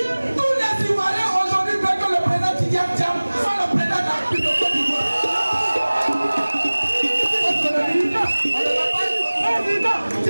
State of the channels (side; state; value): both; inverted; correlation -1.00